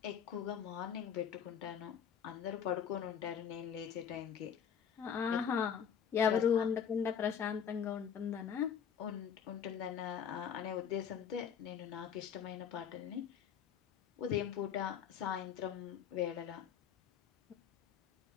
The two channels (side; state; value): right; quieter; 7.9 dB